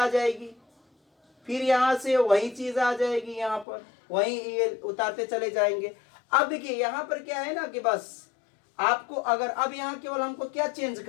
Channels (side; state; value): right; drops out; at 3.7 s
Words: जाएगी, फिर यहाँ से वही चीज आ जाएगी, यहाँ पर वही ये उतारते चले जाएंगे। अब देखिए यहाँ पर क्या है ना कि बस आपको अगर अब यहाँ केवल हमको क्या चेंज